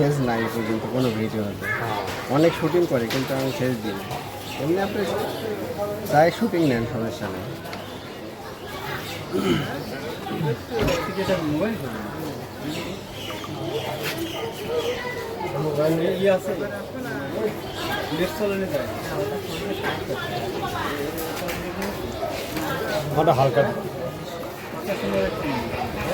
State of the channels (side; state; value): both; identical; correlation 1.00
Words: নাই পর্যন্ত কোনো ভিডিও হবে। অনেক শুটিং করে কিন্তু আমি ফেস দিই না। এমনি আপনি যাই শুটিং নেন, সমস্যা নেই। আমারটা হালকা